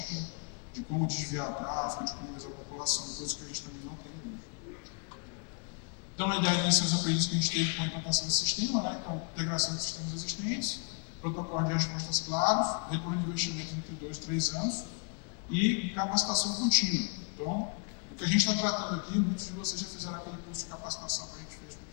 de como desviar tráfego, de como usar a população, coisa que a gente também não tem hoje. Então, a ideia disso é os aprendizados que a gente teve com a implantação do sistema, né? Então, integração de sistemas existentes, protocolo de respostas claros, retorno de investimento entre 2 e 3 anos e capacitação contínua. Então, o que a gente está tratando aqui, muitos de vocês já fizeram aquele curso de capacitação que a gente fez com o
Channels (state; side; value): quieter; right; 38.1 dB